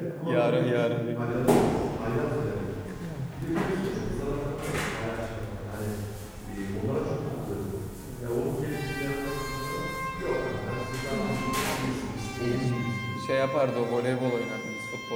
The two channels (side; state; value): both; identical; correlation 1.00